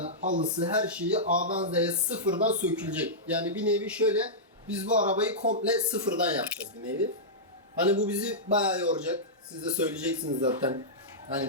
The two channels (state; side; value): normal; both; correlation -0.12